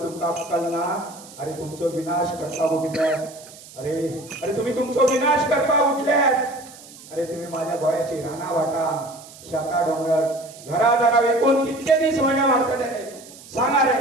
अक्कल ना. अरे तुमचो विनाश करता उठल्यात. अरे तुम्ही तुमचो विनाश करता उठल्यात. अरे तुम्ही माझ्या गोयाची राना वाटा शाखा डोंगर घरादारा विकून कितके दिस माझ्या मारताले रे.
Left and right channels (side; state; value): right; noise; hiss, 19 dB below the sound